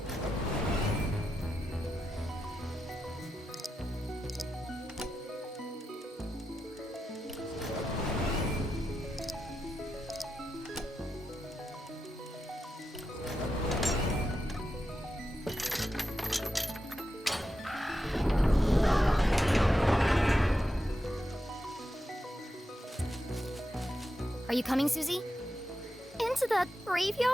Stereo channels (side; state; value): both; normal; correlation 0.88